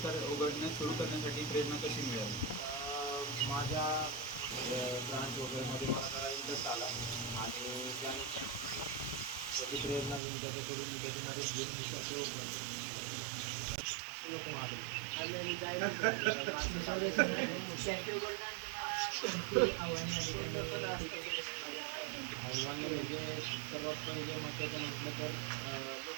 उघडण्यास सुरू करण्यासाठी प्रेरणा कशी मिळाली? माझ्या ब्रांच वगैरेमध्ये मला जरा इंटरेस्ट आला आणि त्यानंतर त्याची प्रेरणा घेऊन त्याच्याकडून मी त्याची मदत घेऊन मी कॅफे ओपन नको माझं कॅफे उघडण्यानंतर आव्हाने आव्हाने म्हणजे सर्वात पहिले महत्त्वाचं म्हटलं तर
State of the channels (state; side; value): drops out; left; at 10.2 s